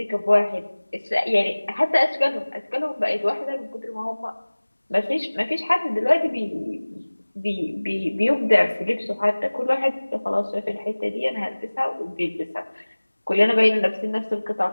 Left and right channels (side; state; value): both; inverted; correlation -1.00